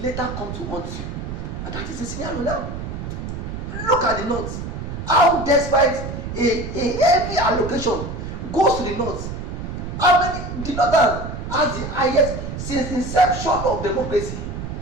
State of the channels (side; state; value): right; noise; rumble, 7 dB below the sound